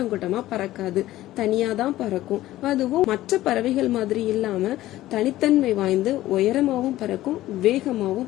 கூட்டமா பறக்காது, தனியாதான் பறக்கும். அதுவும் மற்ற பறவைகள் மாதிரி இல்லாம தனித்தன்மை வாய்ந்து உயரமாவும் பறக்கும்,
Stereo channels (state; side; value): quieter; right; 15.3 dB